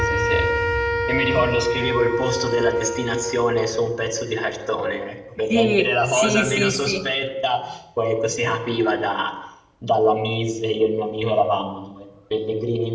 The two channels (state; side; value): identical; both; correlation 1.00